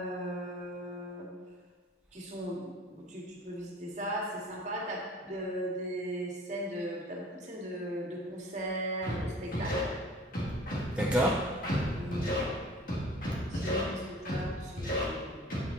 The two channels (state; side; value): normal; both; correlation 0.47